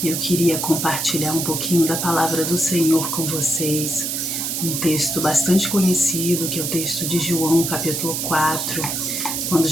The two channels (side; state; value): right; noise; hiss, 2 dB below the sound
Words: Eu queria compartilhar um pouquinho da palavra do Senhor com vocês. Um texto bastante conhecido, que é o texto de João, capítulo 4, quando